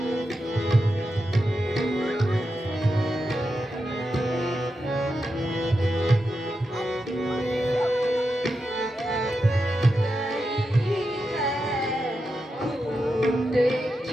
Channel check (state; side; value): normal; both; correlation 0.88